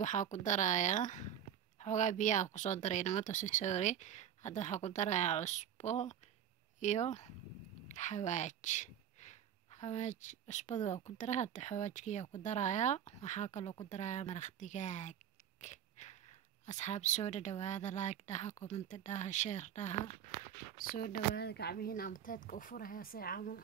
waxaa ku darayaa xoogaa biyaha ku soo daray namato sorry hadda waxaa ku darayaa cusbo iyo xawaaj cusbada waa ku daraa hadda xawaajkiyaa ku darayaa waxaa kaloo ku darayaa maraq digaag asxaab soo dhawaada like dhaha comment dhaha share dhaha soo dhawaada gacmihiina amteedka u furaya si camal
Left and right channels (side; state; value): left; quieter; 9.7 dB